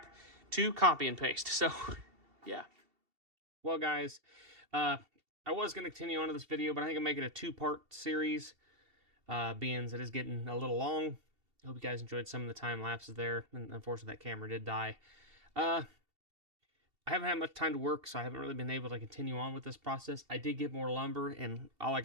to copy and paste. So yeah. Well, guys, I was going to continue on to this video, but I think I'm making a 2-part series, being it is getting a little long. I hope you guys enjoyed some of the time lapses there, and unfortunately that camera did die. I haven't had much time to work, so I haven't really been able to continue on with this process. I did get more lumber, and all I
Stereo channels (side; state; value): left; late; 2.7 ms